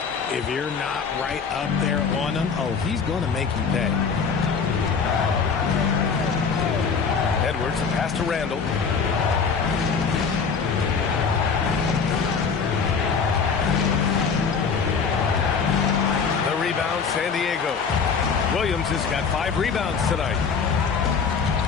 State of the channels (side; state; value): right; quieter; 5.7 dB